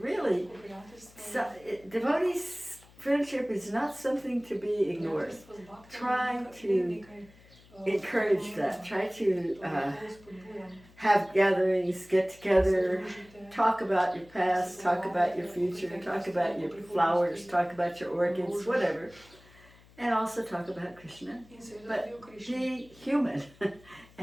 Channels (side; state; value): left; noise; hum, 26 dB below the sound